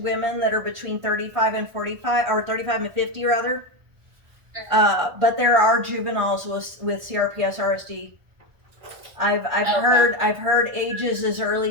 that are between 35 and 45, or 35 and 50 rather. But there are juveniles with CRPS RSD. I've heard ages as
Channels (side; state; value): left; late; 1.4 ms